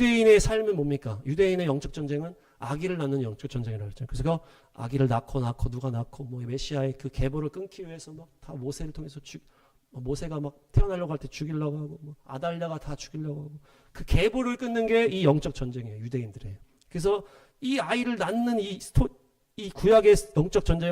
삶은 뭡니까? 유대인의 영적 전쟁은 아기를 낳는 영적 전쟁이라고 했잖아요. 그래서 아기를 낳고 누가 낳고 뭐 메시아의 그 계보를 끊기 위해서 막 다 모세를 통해서 모세가 막 태어나려고 할 때 죽이려고 하고 뭐 아달랴가 다 죽이려고 하고 그 계보를 끊는 게 이 영적 전쟁이에요. 유대인들의. 그래서 이 아이를 낳는 이 구약의 영적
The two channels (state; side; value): identical; both; correlation 1.00